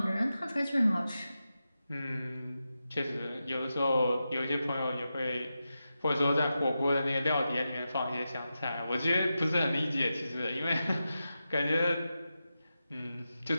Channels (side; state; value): both; inverted; correlation -0.90